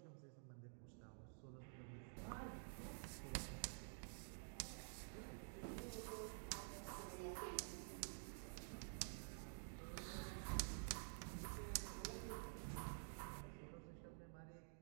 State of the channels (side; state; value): left; silent; digital silence